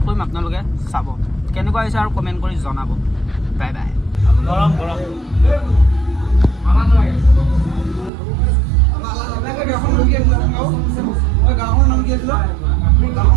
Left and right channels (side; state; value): left; drops out; at 8.1 s